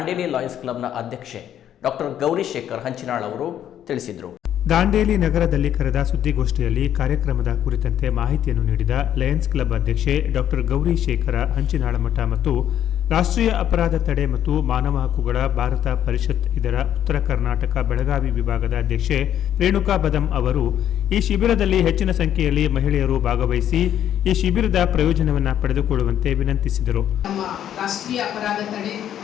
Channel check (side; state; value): right; quieter; 10.5 dB